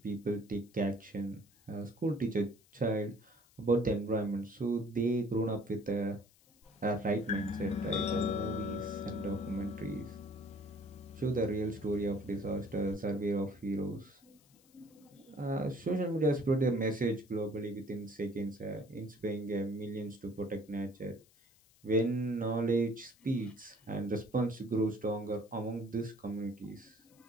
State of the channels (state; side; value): noise; left; hiss, 29 dB below the sound